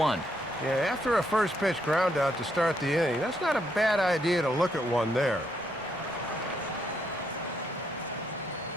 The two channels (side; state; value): both; normal; correlation 0.76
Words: Yeah, after a first pitch ground out to start the inning, that's not a bad idea to look at one there.